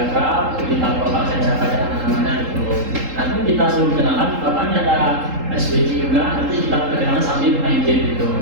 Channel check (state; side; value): late; left; 3.8 ms